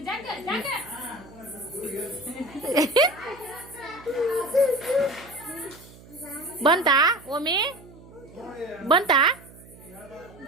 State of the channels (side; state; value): right; noise; hum, 21 dB below the sound